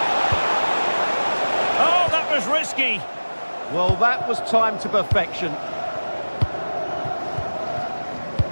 Oh, that was risky. Well, that was timed to perfection.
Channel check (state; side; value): inverted; both; correlation -1.00